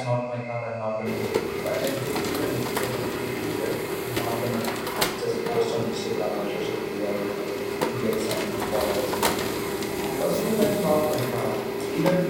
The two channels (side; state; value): both; identical; correlation 1.00